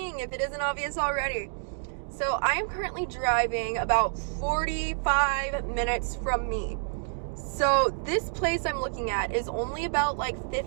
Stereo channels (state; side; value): silent; left; digital silence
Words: if it isn't obvious already. So, I am currently driving about 45 minutes from me. So, this place I'm looking at is only about like